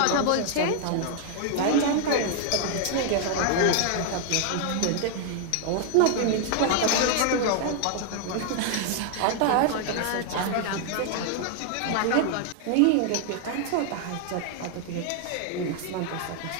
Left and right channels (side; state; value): both; different; correlation 0.00